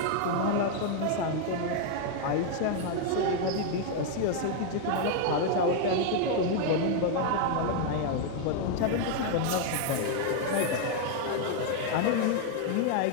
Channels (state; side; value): different; both; correlation 0.00